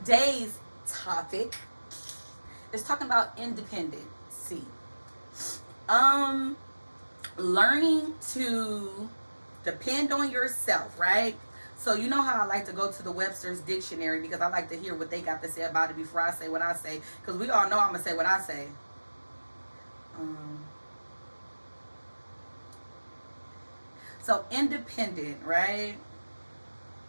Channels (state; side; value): inverted; both; correlation -1.00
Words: topic is talking about independency. Learning to depend on yourself, right? So you know how I like to go to the Webster's dictionary because I like to hear what they got to say about it before I say what I say. Because we all know I'm going to say what I say. So independent, right?